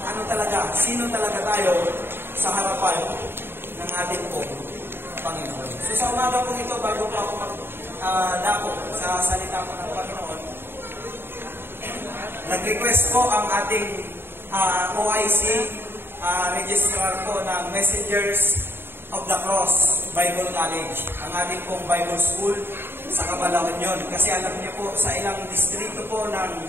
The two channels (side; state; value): left; late; 0.11 ms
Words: ano talaga, sino talaga tayo sa harapan ng ating Panginoon. So, sa umaga po ito, bago po ako magdako sa salita po ng Panginoon, nag-request po ang ating OIC registrar po ng Messengers of the Cross Bible College, ang ating pong Bible School sa Cabalaon yun. Kasi alam niyo po, sa ilang distrito po ng